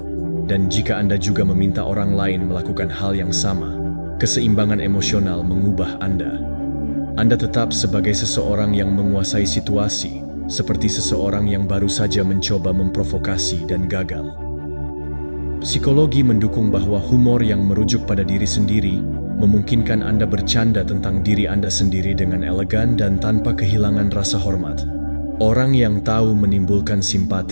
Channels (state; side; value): inverted; both; correlation -1.00